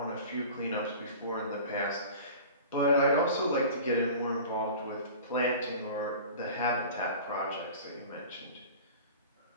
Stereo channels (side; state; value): both; inverted; correlation -0.39